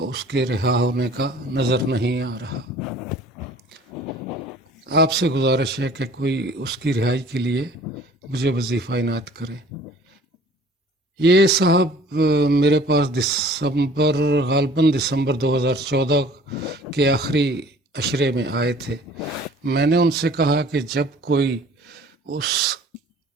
اس کے رہا ہونے کا نظر نہیں آ رہا۔ آپ سے گزارش ہے کہ کوئی اس کی رہائی کے لیے مجھے وظیفہ عنایت کرے۔ یہ صاحب میرے پاس غالباً دسمبر 2014 کے آخری عشرے میں آئے تھے۔ میں نے ان سے کہا کہ جب کوئی اس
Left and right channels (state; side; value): normal; both; correlation 0.50